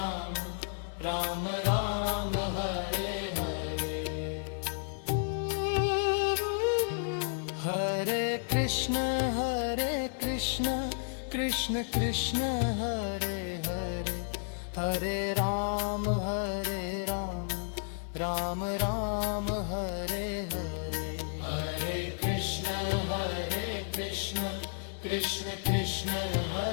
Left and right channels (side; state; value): right; silent; 56 dB below the other